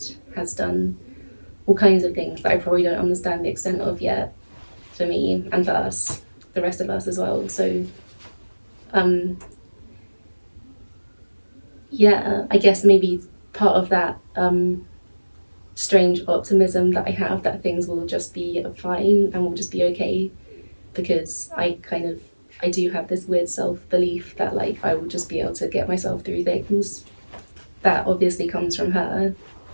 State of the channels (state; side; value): inverted; both; correlation -1.00